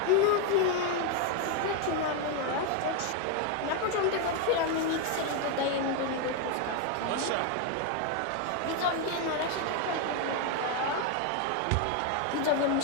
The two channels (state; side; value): different; both; correlation 0.01